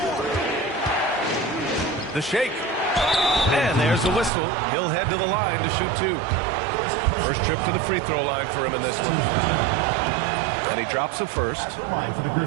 The shake. And there's the whistle. He'll head to the line to shoot 2. First trip to the free throw line for him in this one. And he drops the first. The line for the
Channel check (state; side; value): drops out; left; at 4.3 s